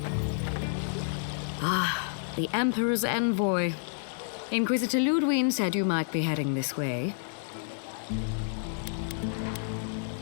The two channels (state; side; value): silent; right; 58 dB below the other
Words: Ah, the Emperor's envoy. Inquisitor Ludwig said you might be heading this way.